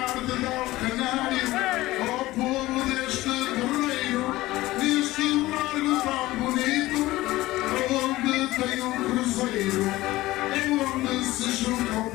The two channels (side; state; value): right; quieter; 17.8 dB